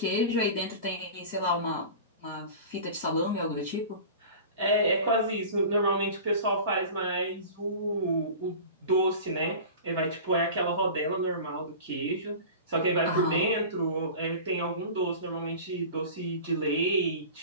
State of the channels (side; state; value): both; inverted; correlation -0.36